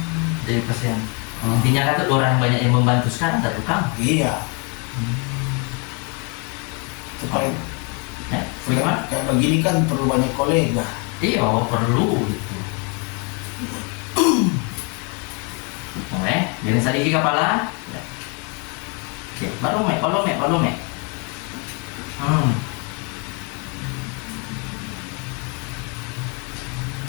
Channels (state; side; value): quieter; right; 34.5 dB